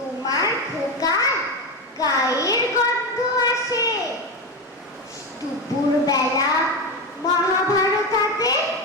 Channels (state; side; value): normal; both; correlation 0.16